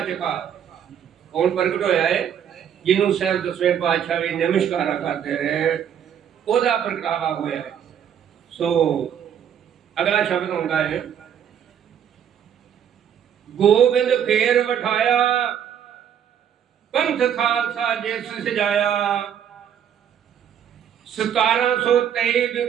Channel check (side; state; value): left; quieter; 9.0 dB